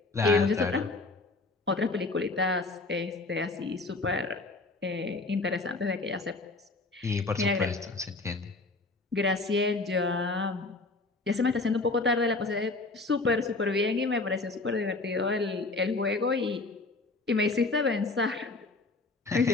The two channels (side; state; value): right; quieter; 3.4 dB